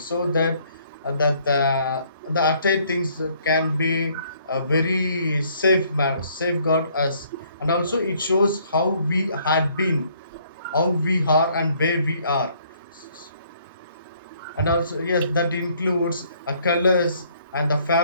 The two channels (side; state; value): both; inverted; correlation -0.64